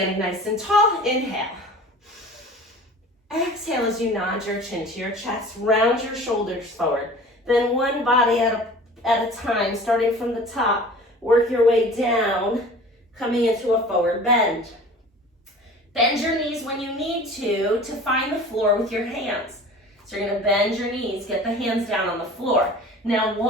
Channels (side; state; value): both; normal; correlation 0.42